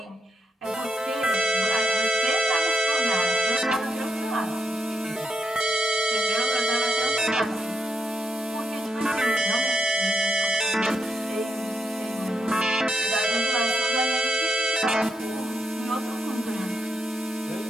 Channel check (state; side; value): normal; both; correlation 0.81